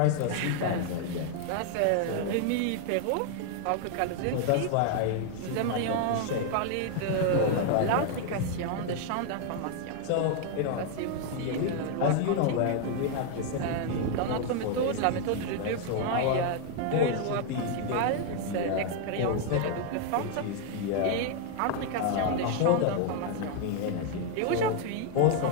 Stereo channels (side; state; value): both; different; correlation 0.00